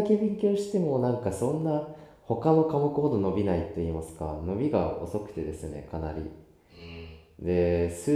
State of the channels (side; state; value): both; identical; correlation 1.00